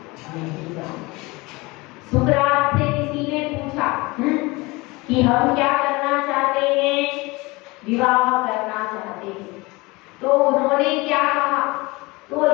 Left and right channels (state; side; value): quieter; right; 23.6 dB